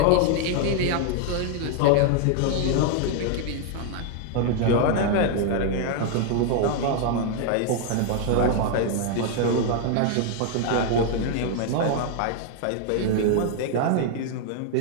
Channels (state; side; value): different; both; correlation 0.00